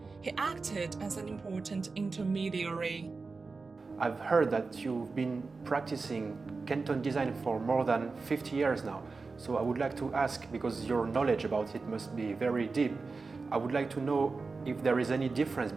He acted as an important intermediary. I've heard that you've been practicing Canton design for more than 50 years now. So I would like to ask, because your knowledge about it must be very deep, I would like to know if there is any difference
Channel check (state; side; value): quieter; left; 4.2 dB